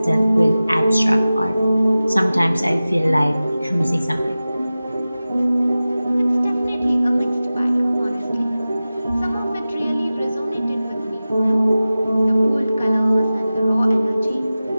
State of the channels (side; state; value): both; inverted; correlation -0.96